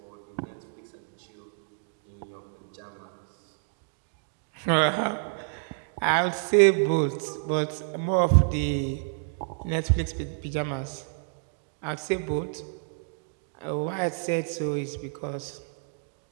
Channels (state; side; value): silent; left; digital silence